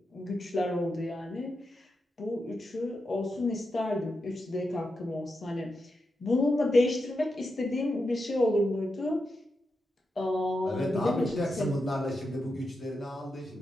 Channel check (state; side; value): normal; both; correlation 0.87